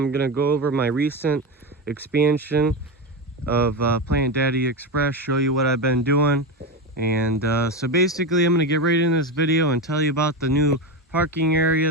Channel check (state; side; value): normal; both; correlation 0.16